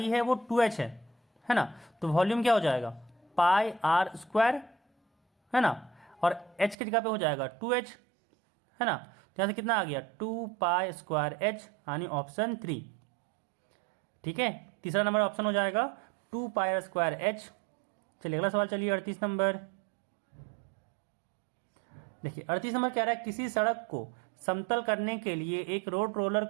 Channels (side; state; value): left; drops out; at 6.8 s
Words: है वो 2h है ना। तो वॉल्यूम क्या हो जाएगा, पाई r स्क्वायर, है ना, और h की जगह पे हो जाएगा 2h, है ना। तो यहाँ से कितना आ गया 2 पाई स्क्वायर h, यानी ऑप्शन 3, ठीक है। तीसरा नंबर ऑप्शन हो जाएगा 2 पाई स्क्वायर h। चलिए अगला सवाल, चलिए 38 नंबर देखिए। 38 नंबर कह रहा है किसी सड़क को समतल करने के लिए एक रोड रोलर